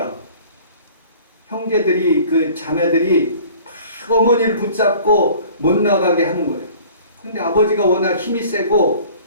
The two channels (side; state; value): both; inverted; correlation -0.48